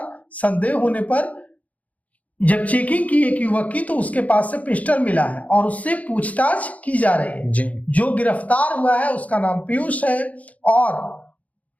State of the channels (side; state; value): right; late; 0.070 ms